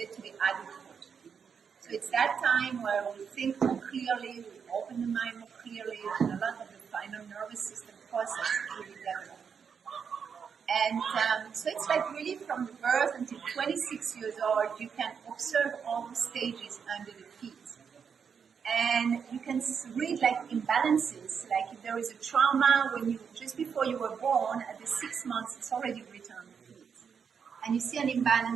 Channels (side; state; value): left; quieter; 6.7 dB